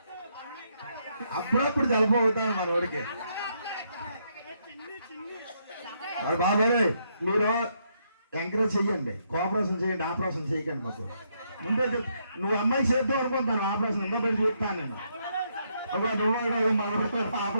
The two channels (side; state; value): both; inverted; correlation -0.76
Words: అప్పుడప్పుడు చల్లపోతాను మనవాడికి. మరి బాబాయ్ మీరు ఎంకరేజ్ చెయ్యండి, కోఆపరేషన్ చేయండి, ఆపరేషన్ చేయకండి. మాకు ముందే నువ్వు అమ్మాయి చేద్దాం అనుకుంటాను, ఆపరేషన్ ఎంతో పెట్టి చూస్తాను నేను. ఒక నువ్వు మనం